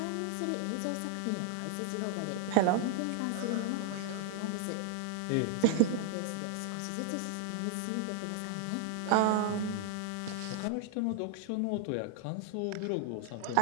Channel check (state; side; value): different; both; correlation 0.00